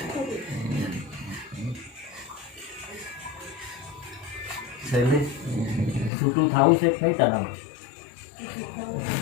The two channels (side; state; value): right; drops out; at 6.1 s